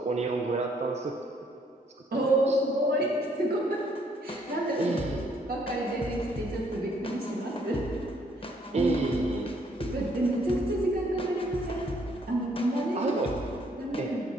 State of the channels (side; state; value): both; normal; correlation 0.67